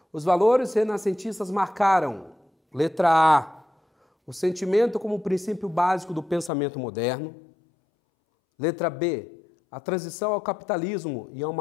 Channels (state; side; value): drops out; right; at 6.5 s